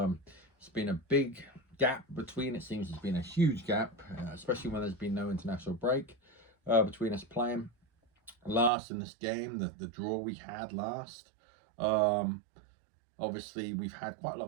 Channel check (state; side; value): drops out; left; at 8.7 s